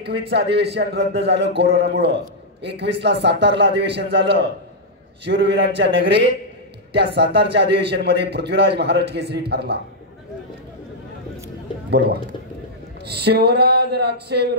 अधिवेशन रद्द झालं कोरोनामुळं। 21 ला सातारला अधिवेशन झालं शूरवीरांच्या नगरीत। त्या सातारच्या अधिवेशन मध्ये पृथ्वीराज महाराष्ट्र केसरी ठरला। बोलवा। शिवराज राक्षे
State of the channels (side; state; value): both; normal; correlation -0.06